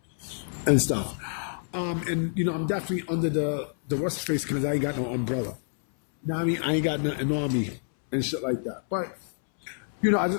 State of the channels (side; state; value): right; silent; 60 dB below the other